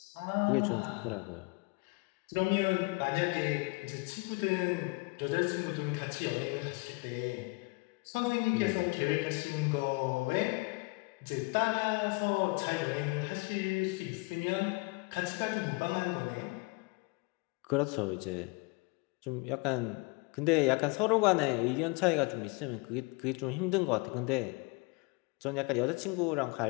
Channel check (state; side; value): quieter; right; 28.3 dB